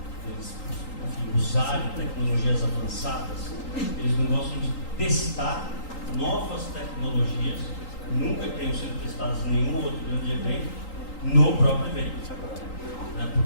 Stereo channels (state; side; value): late; right; 3.8 ms